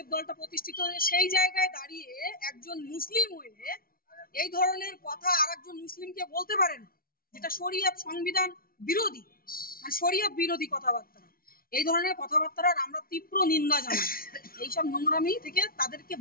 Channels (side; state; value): right; late; 0.43 ms